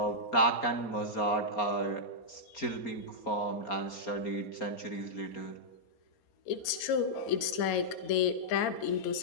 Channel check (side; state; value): right; late; 4.3 ms